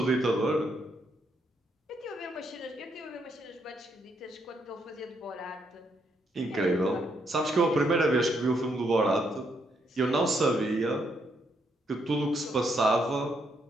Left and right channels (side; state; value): both; normal; correlation 0.76